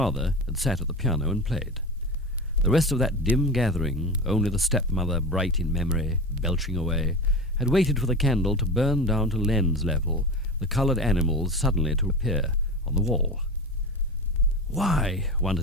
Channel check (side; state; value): both; normal; correlation 0.28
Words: had sat at the piano and played. The rest of that dim gathering, only the stepmother bright in memory, belching away, had waited for the candle to burn down to lens level, the coloured animals suddenly to appear on the wall. Why,